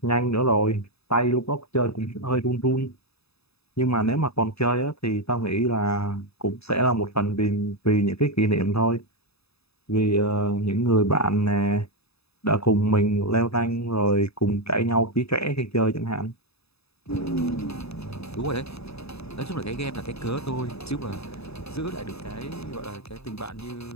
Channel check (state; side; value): late; right; 0.79 ms